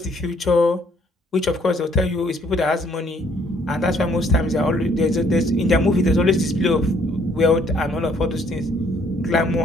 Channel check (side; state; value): both; normal; correlation 0.64